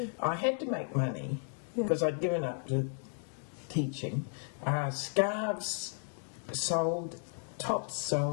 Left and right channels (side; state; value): right; silent; 55 dB below the other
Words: I had to make money because I'd given up to teaching. Scarves sold, tops